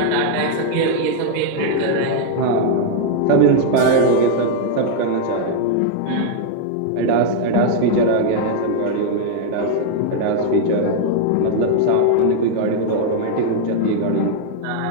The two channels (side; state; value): both; different; correlation 0.00